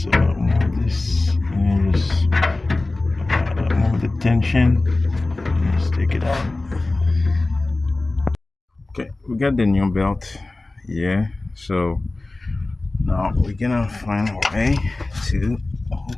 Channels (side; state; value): right; quieter; 3.0 dB